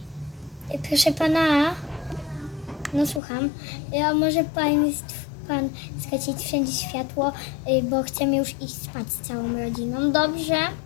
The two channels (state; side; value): drops out; right; at 3.2 s